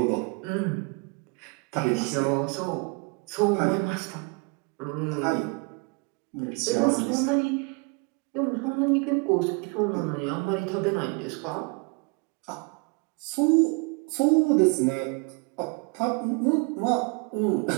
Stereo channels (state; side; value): quieter; left; 32.9 dB